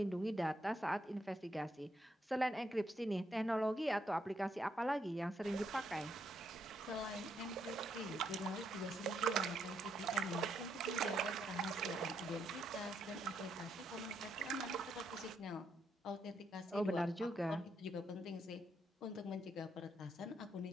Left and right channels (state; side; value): normal; both; correlation 0.77